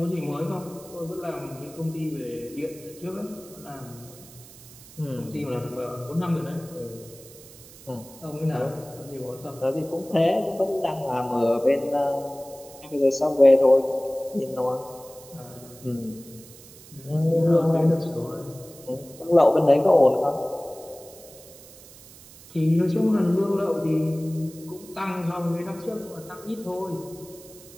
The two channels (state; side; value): noise; right; hiss, 20 dB below the sound